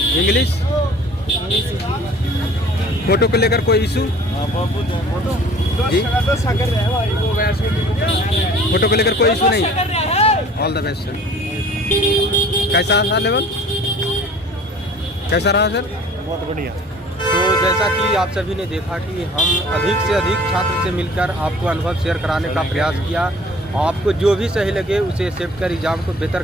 इंग्लिश? फोटो को लेकर कोई इशू जी? फोटो को लेकर कोई इशू नहीं? All the best sir. कैसा रहा लेवल? कैसा रहा सर? बहुत बढ़िया। तो जैसा कि आप सभी ने देखा कि हम अधिक से अधिक छात्र से मिलकर आपको अनुभव शेयर कराने का प्रयास किया। आपको जो भी सही लगे उसे एक्सेप्ट कर एग्ज़ाम को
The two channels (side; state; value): both; normal; correlation 0.49